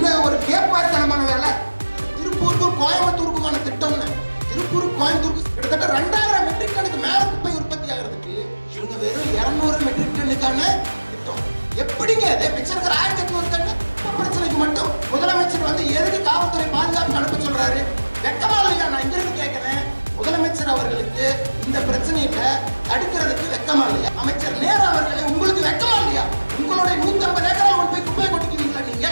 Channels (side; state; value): both; inverted; correlation -1.00